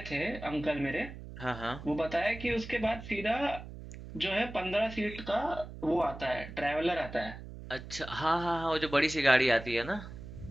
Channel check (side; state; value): right; noise; hum, 12 dB below the sound